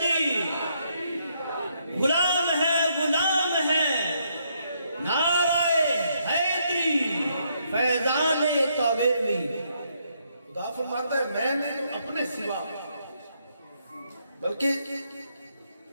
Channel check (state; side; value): inverted; both; correlation -0.74